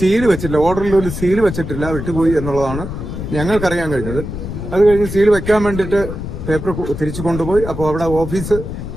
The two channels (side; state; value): left; noise; rumble, 7 dB below the sound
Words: വെച്ചിട്ടില്ല, ഓർഡറിൽ ഒരു സീല് വെച്ചിട്ടില്ല, വിട്ടുപോയി എന്നുള്ളതാണ് ഞങ്ങൾക്കറിയാൻ കഴിഞ്ഞത്. അത് കഴിഞ്ഞ് സീൽ വെക്കാൻ വേണ്ടിയിട്ട് പേപ്പർ തിരിച്ചു കൊണ്ടുപോയി. അപ്പോൾ അവിടെ ഓഫീസ്